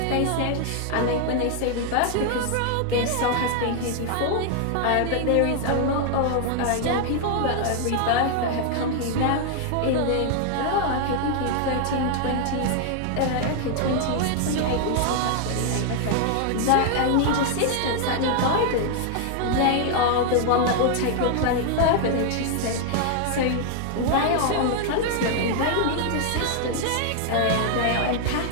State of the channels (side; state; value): both; different; correlation 0.00